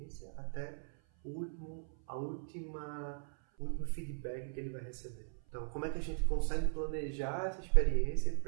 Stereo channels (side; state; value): left; silent; 52 dB below the other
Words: até o último feedback que ele vai receber. Então, como é que a gente consegue planejar essa experiência